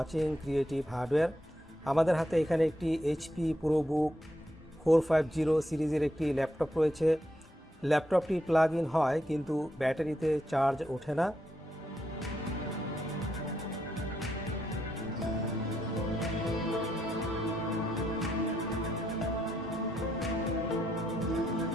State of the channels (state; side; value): normal; both; correlation 0.80